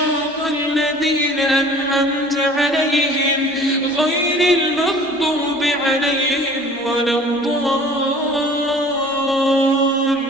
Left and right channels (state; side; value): normal; both; correlation 0.48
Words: الذين أنعمت عليهم غير المغضوب عليهم ولا